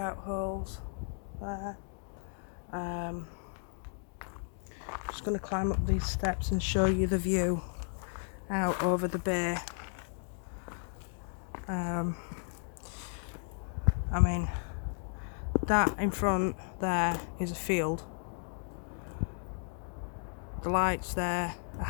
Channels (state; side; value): silent; right; 55 dB below the other